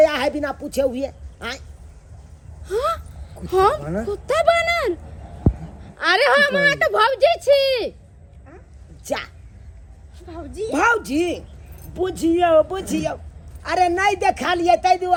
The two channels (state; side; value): identical; both; correlation 1.00